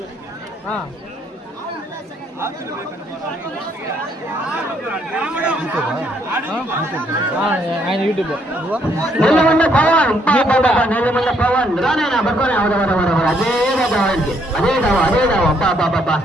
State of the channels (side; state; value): both; normal; correlation 0.70